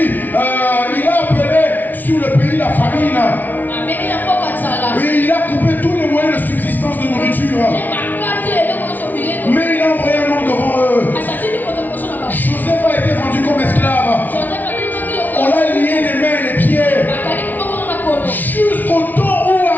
il a appelé sur le pays la famine. Oui, il a coupé tous les moyens de subsistance de nourriture. Mais il a envoyé un homme devant eux. Joseph a été vendu comme esclave. On l'a lié les mains et les pieds. Jusqu'au temps où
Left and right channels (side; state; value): right; late; 0.082 ms